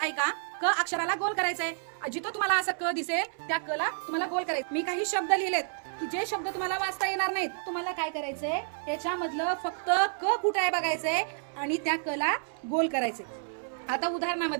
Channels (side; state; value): left; silent; 58 dB below the other